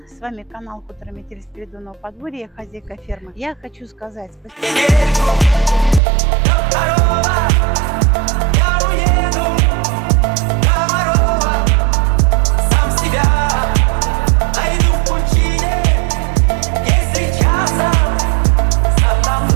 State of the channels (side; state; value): left; drops out; at 6.0 s